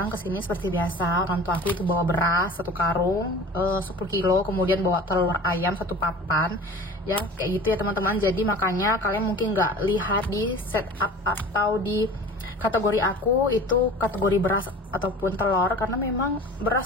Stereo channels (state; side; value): normal; both; correlation 0.40